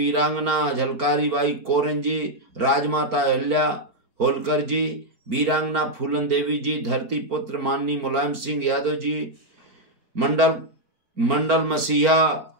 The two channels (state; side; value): late; left; 4.4 ms